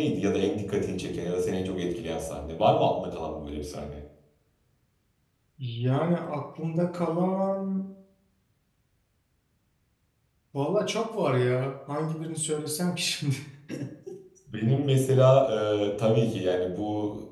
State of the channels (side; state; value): both; identical; correlation 1.00